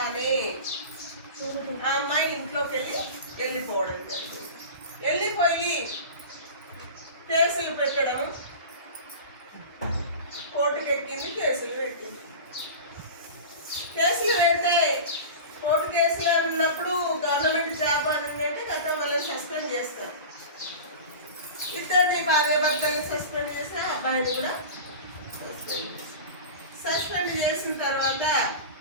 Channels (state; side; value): inverted; both; correlation -0.32